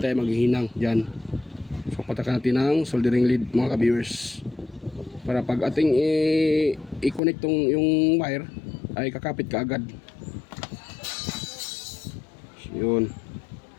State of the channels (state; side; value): drops out; right; at 7.2 s